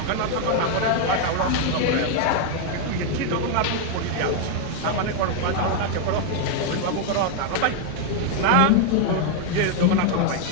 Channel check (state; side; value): different; both; correlation 0.00